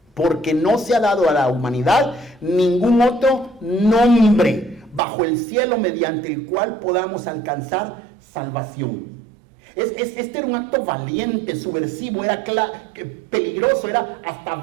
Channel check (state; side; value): drops out; left; at 5.0 s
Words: porque no se ha dado a la humanidad ningún otro nombre bajo el cielo mediante el cual podamos alcanzar salvación. Este era un acto valiente, subversivo, era peligroso, era hasta